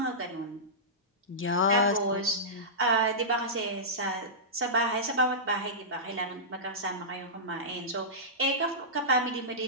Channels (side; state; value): both; normal; correlation -0.16